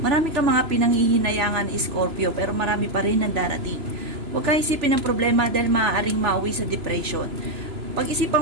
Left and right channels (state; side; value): late; left; 3.0 ms